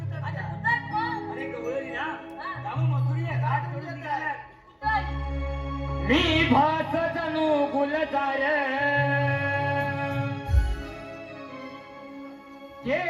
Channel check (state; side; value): identical; both; correlation 1.00